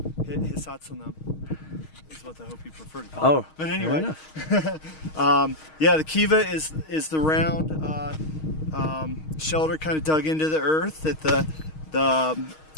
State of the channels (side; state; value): right; late; 6.4 ms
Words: is what I hope you prefer to call it. But anyway. Yeah, the Kiva is the round shelter kind of dug into the earth that